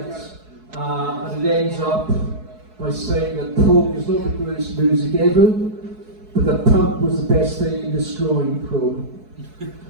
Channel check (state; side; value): late; left; 4.7 ms